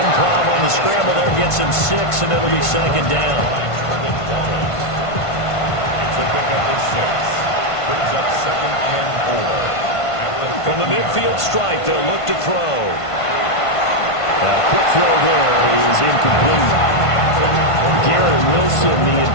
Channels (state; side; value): late; right; 1.5 ms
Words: on the scramble there gets him 6, and it'll be 2nd down. It's a pickup of 6. Brings up 2nd and 4. From the midfield strike, they'll look to throw. Quick throw there is incomplete. Garrett Wilson, the